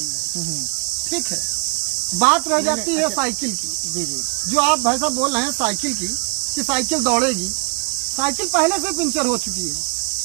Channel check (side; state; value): left; quieter; 32.9 dB